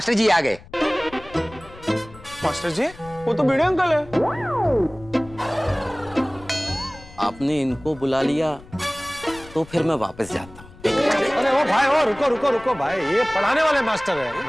जी आ गए। मास्टर जी वो तो भिड़े अंकल है। आपने इनको बुला लिया तो फिर मैं वापस जाता हूँ। अरे ओ भाई ओ रुको रुको रुको भाई, ये पढ़ाने वाले मास्टर है।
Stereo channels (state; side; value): noise; left; rumble, 20 dB below the sound